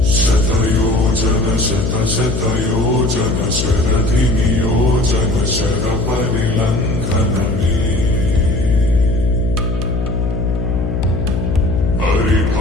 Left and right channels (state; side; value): noise; left; hum, 2 dB below the sound